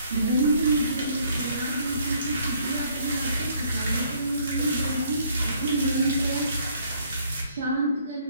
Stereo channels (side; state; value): both; inverted; correlation -0.63